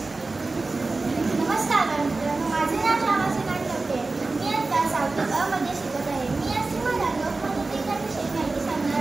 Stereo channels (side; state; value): left; quieter; 3.5 dB